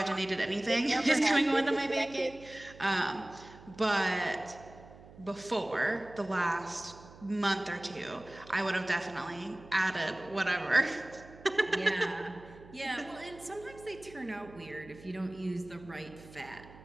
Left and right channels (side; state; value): right; noise; hum, 20 dB below the sound